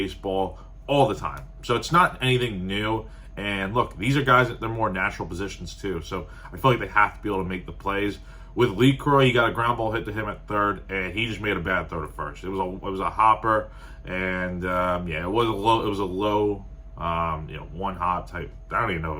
all the time, so it's not anything new. And look, these are guys that they're more natural positions too, so I feel like they have to be able to make the plays. With LeCroy, he got a ground ball hit to him at third, and he just made a bad throw to first. It was a hopper, and it was a low one hop type. I don't even know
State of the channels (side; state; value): both; identical; correlation 1.00